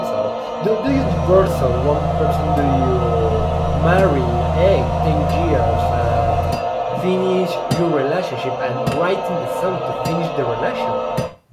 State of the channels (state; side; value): identical; both; correlation 1.00